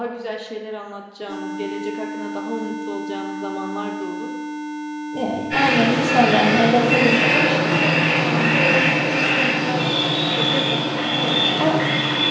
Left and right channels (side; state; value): both; identical; correlation 1.00